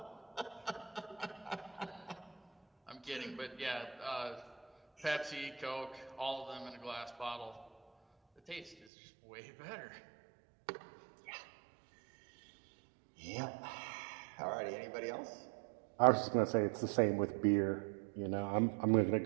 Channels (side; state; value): left; drops out; at 8.8 s